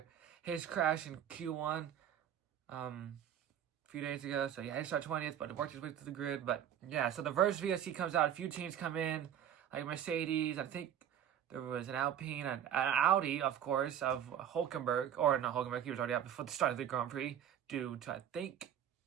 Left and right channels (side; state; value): left; quieter; 9.8 dB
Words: his crash in Q1 a few days ago. So yeah, he started 20th, but it worked his way through the grid. But yeah, so the first VSC comes out. A few teams come in, like Mercedes. I think there was an Alpine, an Audi, of course, of Hulkenberg. Or not Hulkenberg, he was already out before the start of the Grand Prix due to, I think,